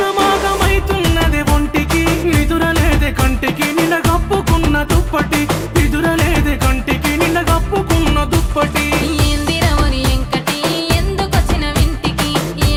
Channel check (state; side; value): identical; both; correlation 1.00